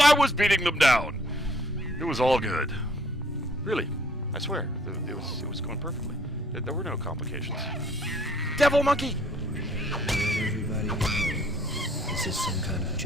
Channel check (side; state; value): both; normal; correlation 0.61